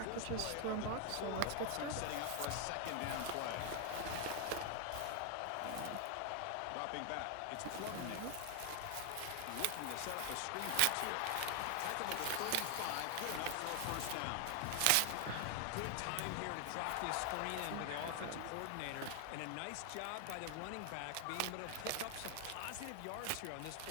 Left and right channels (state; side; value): different; both; correlation 0.00